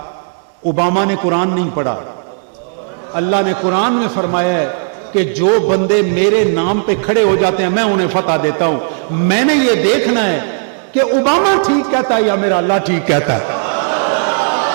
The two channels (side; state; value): left; silent; digital silence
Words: اوباما نے قرآن نہیں پڑھا، اللہ نے قرآن میں فرمایا ہے کہ جو بندے میرے نام پہ کھڑے ہو جاتے ہیں میں انہیں فتح دیتا ہوں۔ میں نے یہ دیکھنا ہے کہ اوباما ٹھیک کہتا ہے یا میرا اللہ ٹھیک کہتا ہے۔